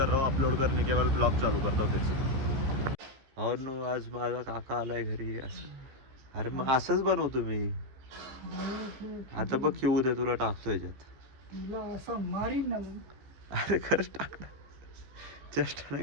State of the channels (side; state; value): left; late; 15 ms